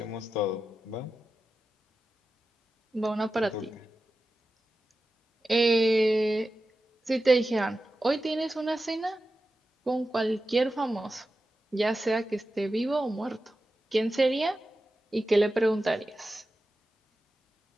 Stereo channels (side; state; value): both; normal; correlation 0.92